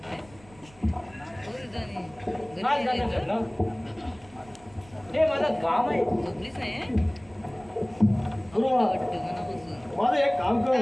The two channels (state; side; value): noise; right; rumble, 25 dB below the sound